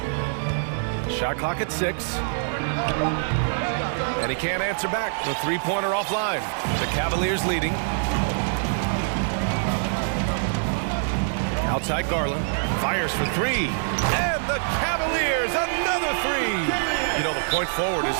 Shot clock at 6. And he can't answer back. The three-pointer offline. The Cavaliers leading. Outside Garland. Fires for three. And the Cavaliers, another three. You know, the point forward is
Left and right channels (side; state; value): left; silent; 62 dB below the other